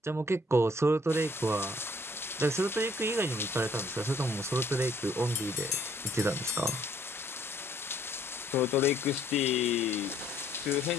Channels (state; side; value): normal; both; correlation 0.63